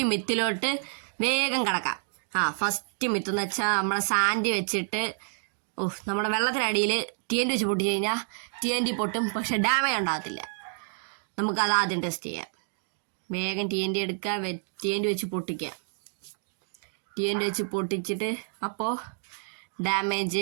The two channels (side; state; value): left; silent; 59 dB below the other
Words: മിത്തിലോട്ട് വേഗം കിടക്കാം. ഫസ്റ്റ് മിത്ത് എന്ന് വെച്ചാൽ നമ്മളെ സാൻഡ് വെച്ചിട്ട് നമ്മുടെ വെള്ളത്തിനടിയിൽ TNT വെച്ച് പൊട്ടിച്ച് കഴിഞ്ഞാൽ TNT പൊട്ടും, പക്ഷെ ഡാമേജ് ഉണ്ടാകത്തില്ല. നമുക്കത് ആദ്യം ടെസ്റ്റ് ചെയ്യാം. വേഗം TNT എടുക്കുക, TNT വെച്ച് പൊട്ടിക്കുക. TNT വെച്ച് പൊട്ടിച്ചിട്ട് അപ്പോൾ